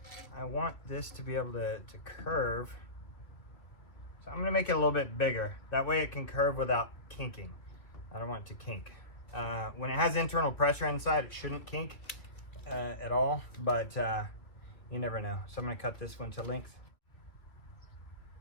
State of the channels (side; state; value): right; late; 2.9 ms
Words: I want this to be able to curve. So I'm gonna make it a little bit bigger. That way it can curve without kinking. I don't want it to kink. When it has internal pressure inside, it shouldn't kink at all, but you never know. So I'm gonna cut this one to length.